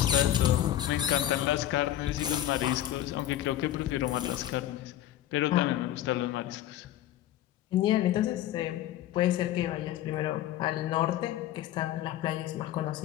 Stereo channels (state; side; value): quieter; right; 12.8 dB